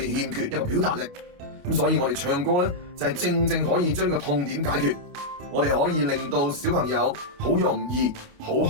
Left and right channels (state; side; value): late; left; 28 ms